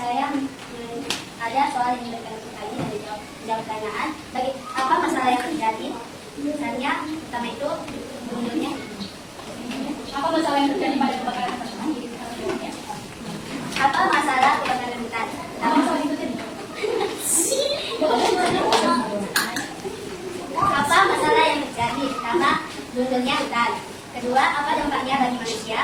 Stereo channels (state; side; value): identical; both; correlation 1.00